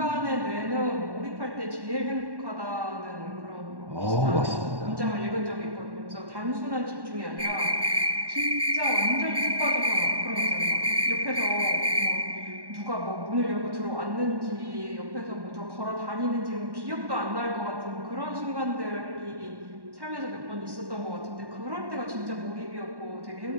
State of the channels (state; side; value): late; left; 1.1 ms